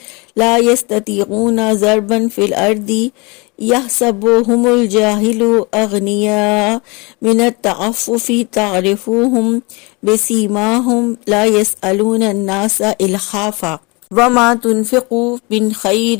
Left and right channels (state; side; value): quieter; right; 27.6 dB